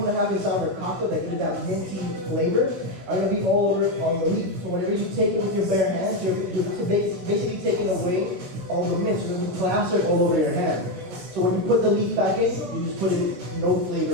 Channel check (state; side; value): late; left; 17 ms